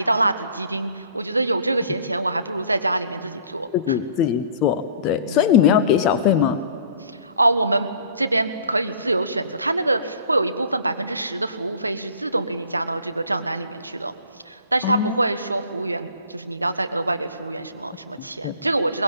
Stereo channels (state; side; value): inverted; both; correlation -0.51